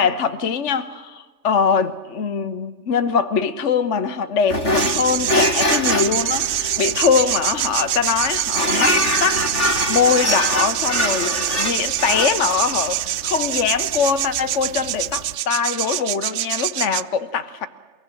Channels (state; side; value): late; right; 3.3 ms